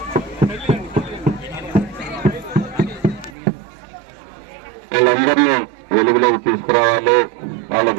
వాళ్ళందరినీ వెలుగులోకి తీసుకురావాలి,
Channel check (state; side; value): drops out; left; at 3.4 s